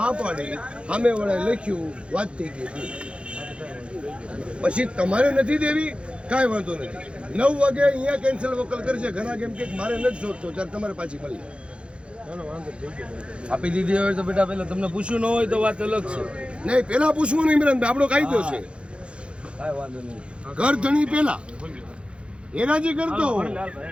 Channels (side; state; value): left; late; 0.058 ms